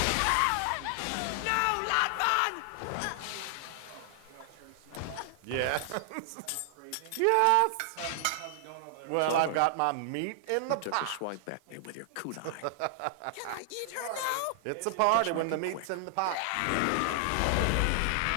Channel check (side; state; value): both; different; correlation 0.00